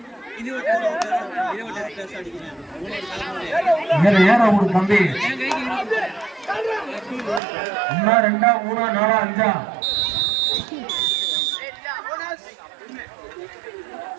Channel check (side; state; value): left; drops out; at 7.4 s